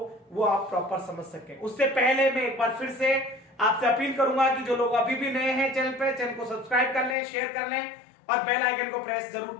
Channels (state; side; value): drops out; right; at 7.2 s